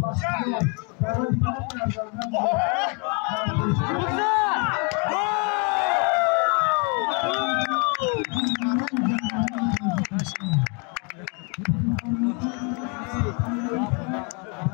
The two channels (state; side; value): quieter; right; 34.5 dB